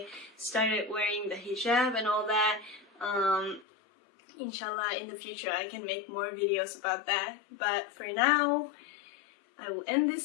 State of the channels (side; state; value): right; drops out; at 3.7 s